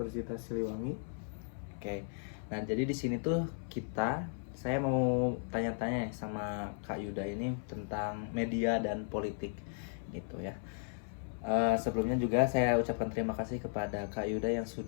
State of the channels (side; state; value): right; silent; 54 dB below the other